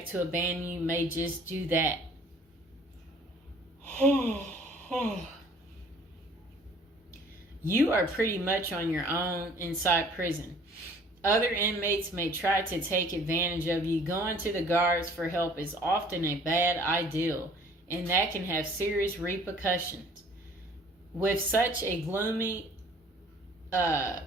to abandon you may just do that. You are pretty much on your own inside prison. Other inmates may try to take advantage of you. Going to the guards for help is often a bad idea, and that can have serious repercussions. With such a gloomy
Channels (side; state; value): both; normal; correlation 0.54